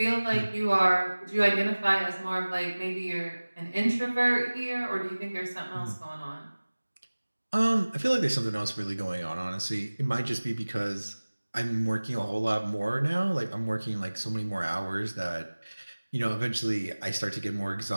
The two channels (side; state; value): both; inverted; correlation -1.00